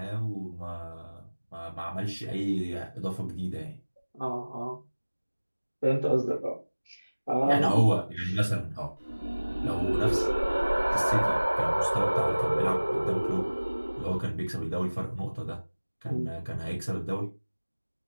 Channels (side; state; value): both; inverted; correlation -1.00